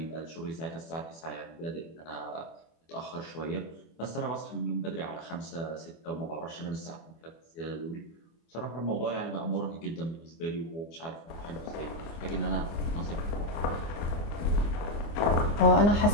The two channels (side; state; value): right; late; 24 ms